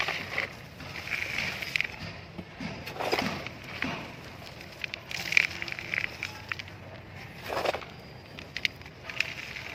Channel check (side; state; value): both; identical; correlation 1.00